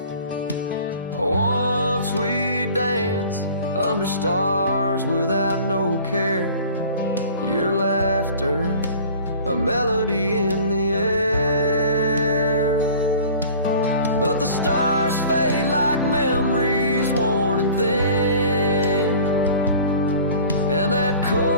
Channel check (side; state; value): both; inverted; correlation -0.45